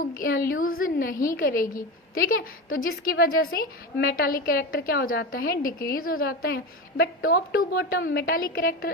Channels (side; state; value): both; normal; correlation 0.22